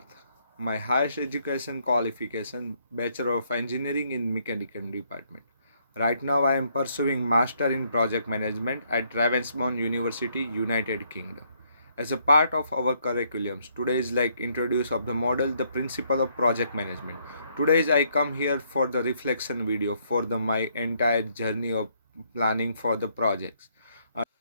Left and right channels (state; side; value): inverted; both; correlation -0.71